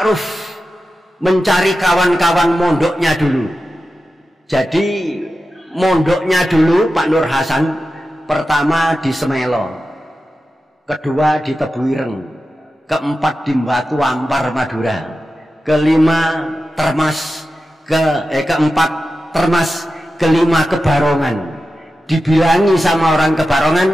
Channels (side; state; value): both; normal; correlation 0.92